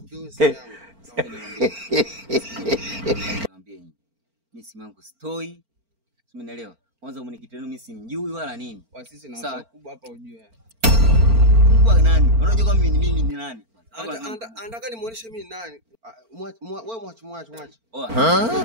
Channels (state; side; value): late; left; 4.4 ms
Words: simu yangu. Niambie nyinyi. Mimi simu yangu stoi. Umeelewa? Kwanza mwenyekiti wenu mimi simjui wala nini. Kwa sisi na watu wakubwa hapa ujue. Kwa nani? Unajua kama mimi ni nani? Anataka nimuoneshe mimi nani. Wewe mwache.